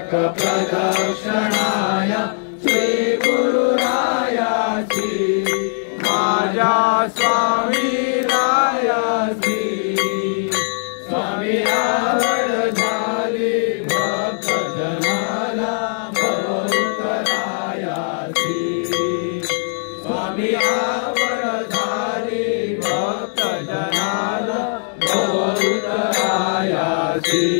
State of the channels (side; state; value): right; silent; digital silence